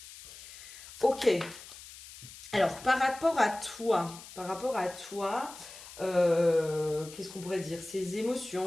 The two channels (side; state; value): left; noise; hiss, 16 dB below the sound